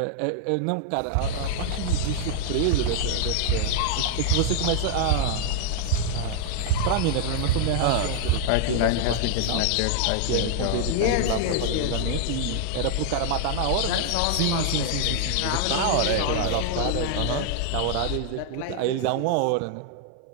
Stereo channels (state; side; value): different; both; correlation -0.01